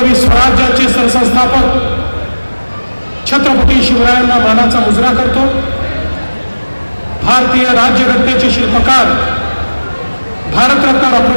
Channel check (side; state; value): both; inverted; correlation -1.00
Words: स्वराज्याचे सरसंस्थापक छत्रपती शिवरायांना मानाचा मुजरा करतो. भारतीय राज्यघटनेचे शिल्पकार भारतरत्न डॉक्टर